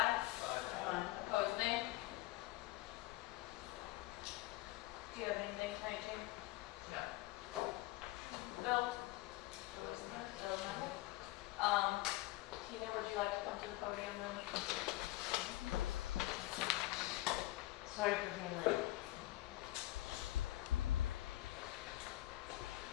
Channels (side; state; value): right; quieter; 17.5 dB